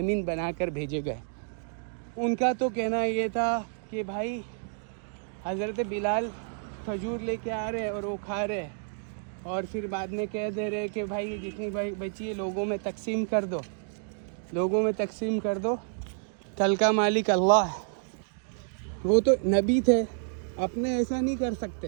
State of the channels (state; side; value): silent; left; digital silence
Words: बनाकर भेजे गए, उनका तो कहना ये था कि भाई हज़रत बिलाल खजूर लेके आ रहे और वो खा रहे और फिर बाद में कह दे रहे कि भाई जितनी भाई बची है लोगों में तकसीम कर दो, लोगों में तकसीम कर दो, कल का मालिक अल्लाह है। वो तो नबी थे, अपने ऐसा नहीं कर